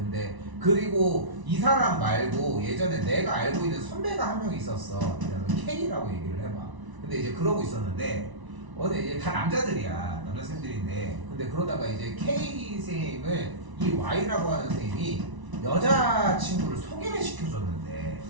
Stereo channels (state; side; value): late; left; 1.0 ms